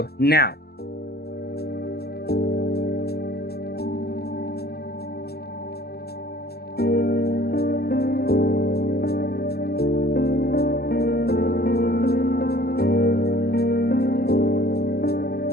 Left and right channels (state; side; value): late; right; 0.46 ms